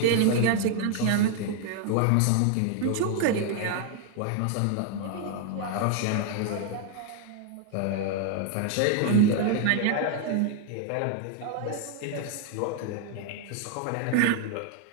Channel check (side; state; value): both; different; correlation 0.00